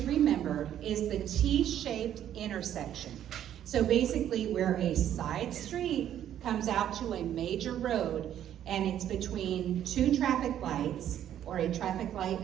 remember is the T-shaped intersection. So basically where a side street comes out to a major road and it's between two traffic lights or a traffic light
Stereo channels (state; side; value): quieter; left; 10.8 dB